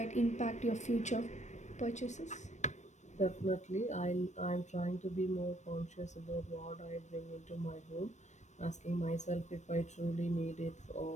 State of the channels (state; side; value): late; right; 0.34 ms